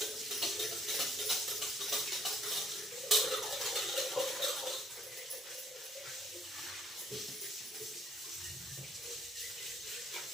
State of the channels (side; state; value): both; normal; correlation 0.65